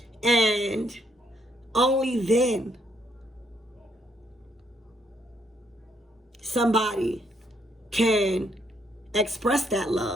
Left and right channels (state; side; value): normal; both; correlation 0.73